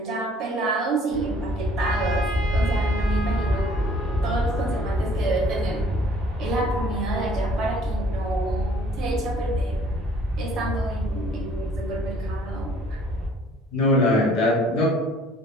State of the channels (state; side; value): normal; both; correlation 0.57